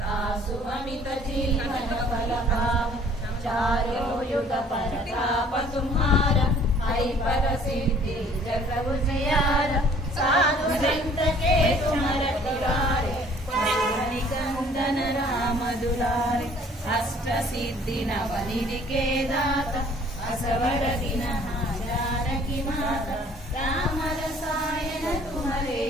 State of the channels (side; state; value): both; normal; correlation 0.55